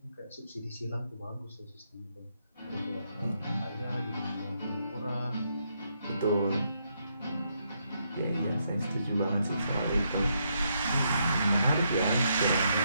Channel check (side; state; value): both; inverted; correlation -0.77